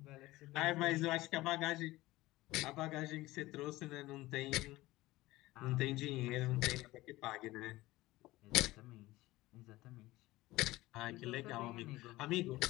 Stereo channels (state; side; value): quieter; right; 18.5 dB